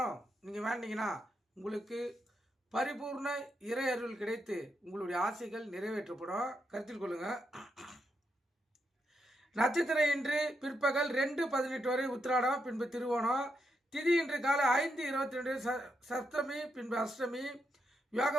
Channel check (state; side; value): normal; both; correlation 0.82